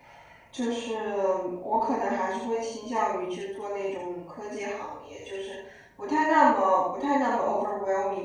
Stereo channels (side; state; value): both; identical; correlation 1.00